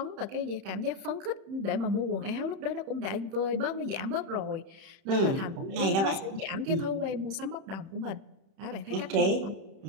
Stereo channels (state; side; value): late; left; 31 ms